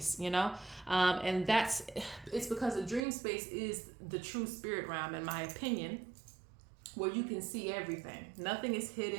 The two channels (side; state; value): left; drops out; at 3.0 s